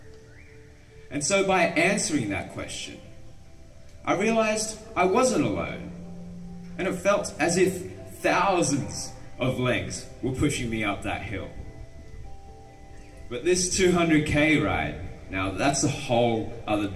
And so by answering that question, I realized I wasn't alone. And it felt as if thousands of legs were pushing me up that hill. But this 200K ride, now that's a whole other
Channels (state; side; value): identical; both; correlation 1.00